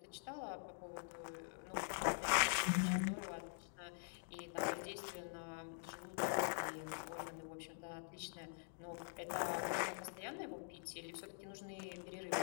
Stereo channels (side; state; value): right; silent; digital silence